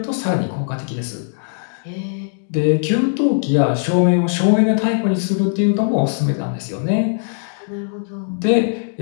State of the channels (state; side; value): silent; right; digital silence